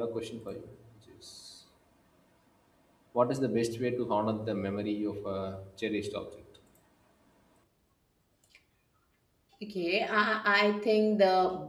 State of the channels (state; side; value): identical; both; correlation 1.00